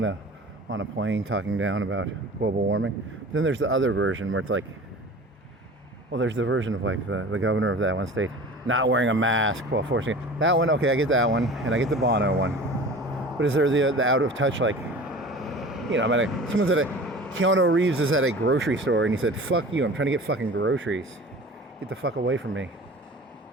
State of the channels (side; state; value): both; normal; correlation 0.40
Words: a plane talking down about global warming. Then there's the other version where it's like, well, there's the version of like the governor of that one state not wearing a mask while forcing it. That one, okay, I get that one, and I get the Bono one. But is there the out of touch, like, someone's at Keanu Reeves is at a grocery store and he said, fuck you, I'm trying to get fucking groceries. Get the fuck away from me.